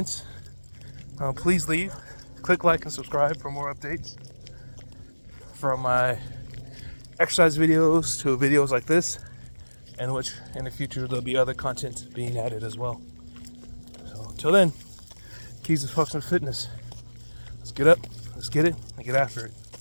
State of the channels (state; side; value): inverted; both; correlation -1.00